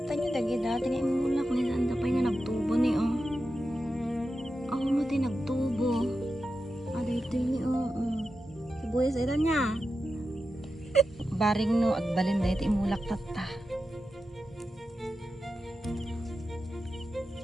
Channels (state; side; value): normal; both; correlation 0.90